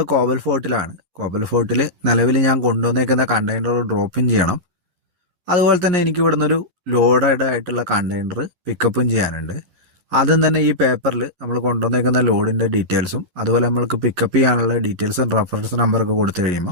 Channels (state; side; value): late; left; 10 ms